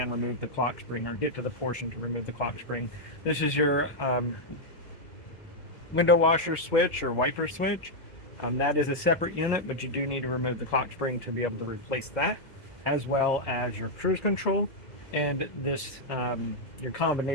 remove the clock spring, or get to the portion to remove the clock spring. This is your window washer switch or wiper switch. That is a separate unit, but you do need to remove the clock spring to be able to replace that, as well as your cruise control and this your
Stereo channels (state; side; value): late; right; 2.0 ms